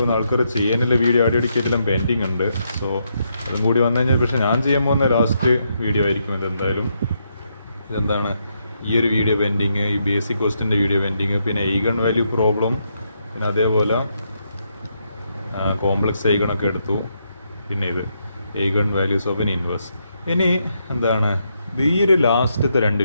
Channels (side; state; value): both; inverted; correlation -0.79